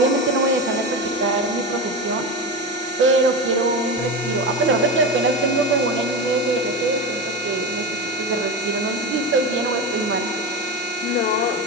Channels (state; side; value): normal; both; correlation 0.20